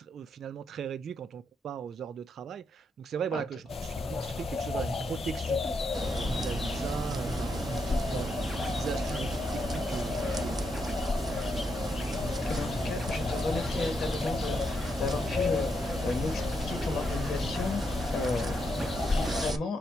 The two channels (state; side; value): normal; both; correlation 0.81